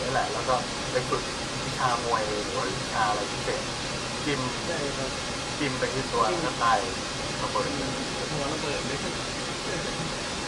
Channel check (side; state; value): both; identical; correlation 1.00